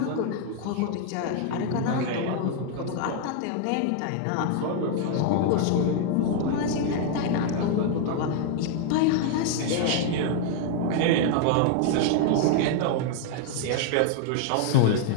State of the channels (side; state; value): both; different; correlation 0.00